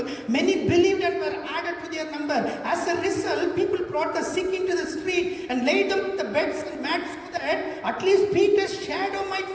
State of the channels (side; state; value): both; identical; correlation 1.00